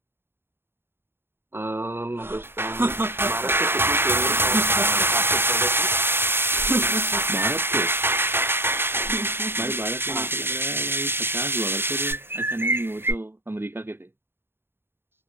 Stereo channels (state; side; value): late; left; 0.11 ms